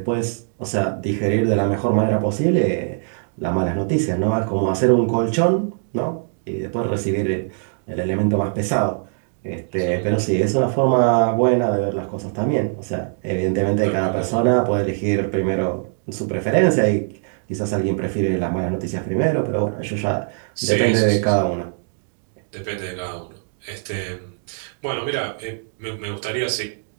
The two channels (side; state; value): left; silent; digital silence